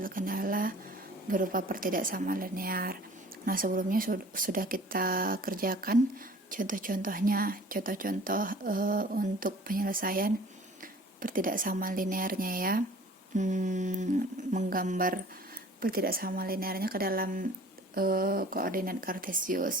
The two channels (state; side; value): normal; both; correlation 0.48